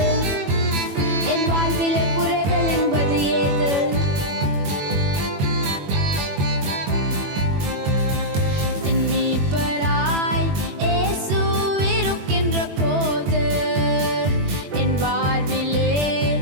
என் வாழ்விலே குறைகள் என்பது ஏது? என் மேய்ப்பராய் இயேசு இருக்கின்ற போது என் வாழ்விலே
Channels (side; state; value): left; late; 21 ms